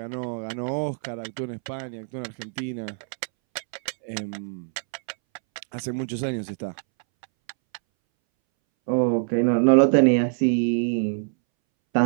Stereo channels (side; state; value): left; silent; 62 dB below the other